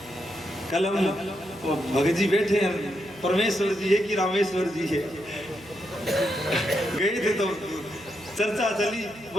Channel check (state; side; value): noise; right; hum, 23 dB below the sound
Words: कल हम भगत जी बैठे हैं, परमेश्वर जी है कि रामेश्वर जी है, गए थे तो चर्चा चली,